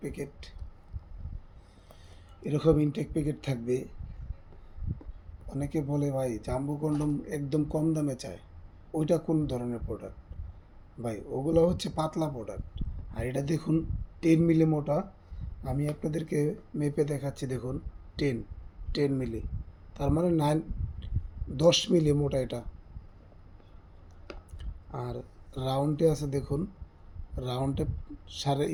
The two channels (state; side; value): identical; both; correlation 1.00